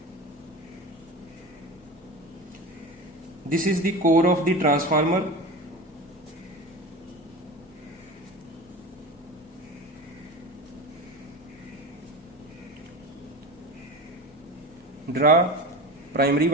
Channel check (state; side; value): normal; both; correlation 0.29